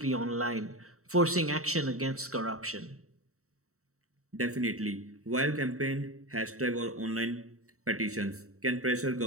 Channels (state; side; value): late; left; 0.64 ms